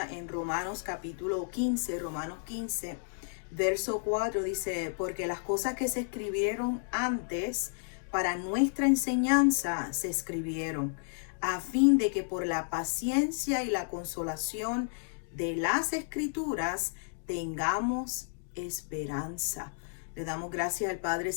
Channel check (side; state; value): right; silent; digital silence